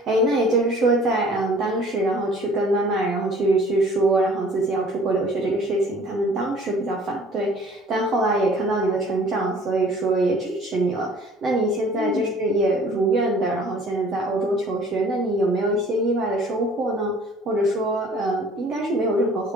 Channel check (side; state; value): both; normal; correlation 0.51